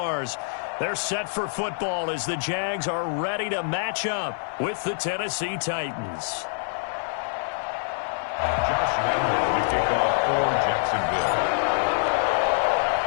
They're set for football as the Jags are ready to match up with the Tennessee Titans. Josh Allen, the kickoff for Jacksonville.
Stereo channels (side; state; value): right; silent; digital silence